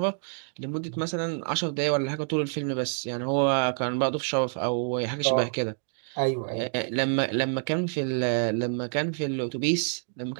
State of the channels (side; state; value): left; silent; 60 dB below the other